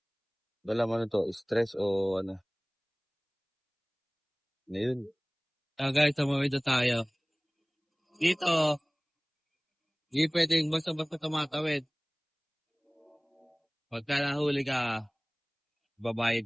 Wala man to, stress o ano. Ngayon. Guys, tumawid na tayo. Dito, hindi pwedeng basta-basta tumatawid. Pagka nahuli ka,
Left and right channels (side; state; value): both; identical; correlation 1.00